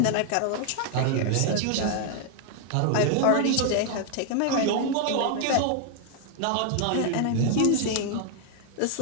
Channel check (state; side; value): different; both; correlation 0.00